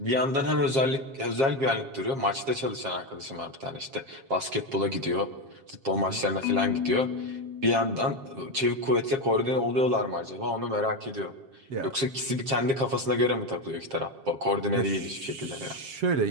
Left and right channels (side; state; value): left; late; 7.5 ms